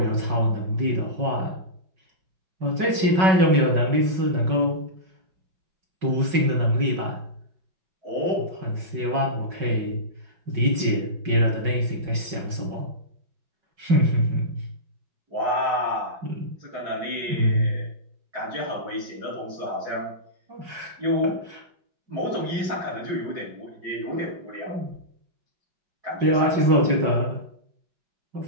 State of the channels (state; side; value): late; left; 5.4 ms